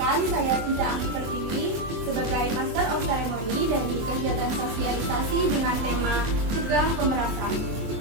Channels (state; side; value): late; left; 24 ms